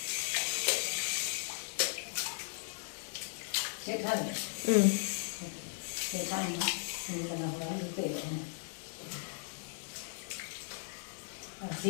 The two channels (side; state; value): right; silent; 53 dB below the other